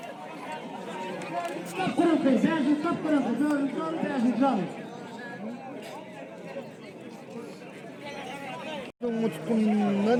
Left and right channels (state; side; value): identical; both; correlation 1.00